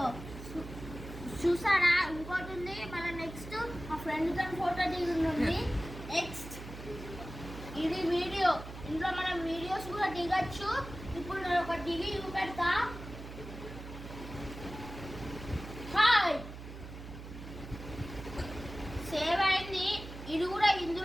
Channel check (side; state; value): right; noise; hum, 12 dB below the sound